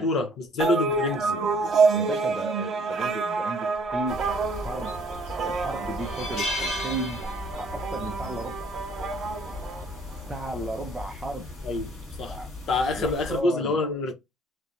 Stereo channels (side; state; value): both; normal; correlation 0.60